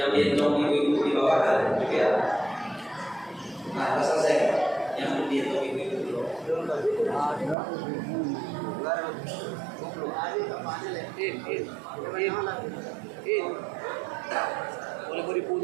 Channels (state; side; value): drops out; left; at 7.6 s